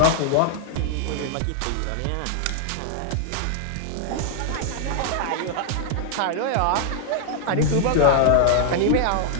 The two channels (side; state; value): both; different; correlation -0.01